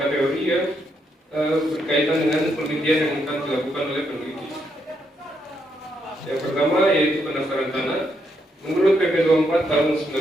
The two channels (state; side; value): normal; both; correlation 0.78